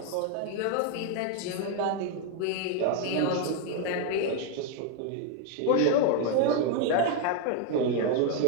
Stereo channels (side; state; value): both; different; correlation 0.01